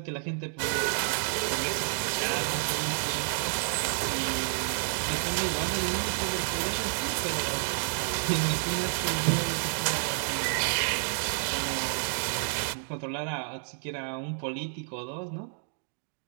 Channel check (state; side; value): silent; left; digital silence